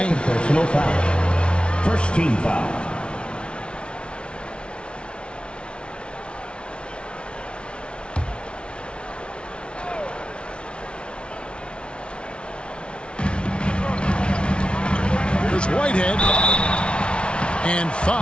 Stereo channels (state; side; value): late; right; 0.058 ms